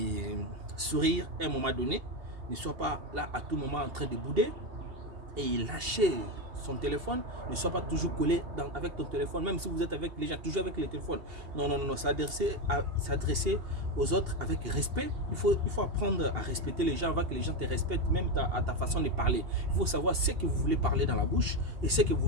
sourire à un moment donné, ne soit pas là à tout moment en train de bouder et lâcher son téléphone, ne soit pas toujours collé avec ton téléphone, même si vous êtes avec les gens, toujours avec le téléphone. Non, non, non, non, s'adresser aux autres avec respect. Il faut apprendre à respecter les gens, avant que les gens te respectent, même à ta façon de parler. Il faut savoir ce que vous voulez parler dans la bouche et ce que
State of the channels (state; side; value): late; left; 2.8 ms